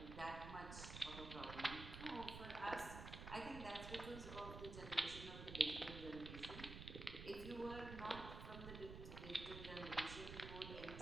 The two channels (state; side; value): noise; right; rumble, 8 dB below the sound